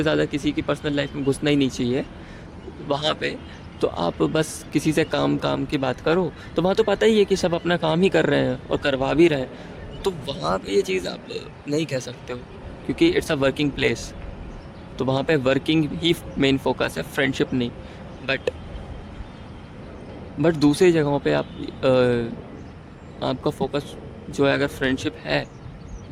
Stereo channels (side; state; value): both; identical; correlation 1.00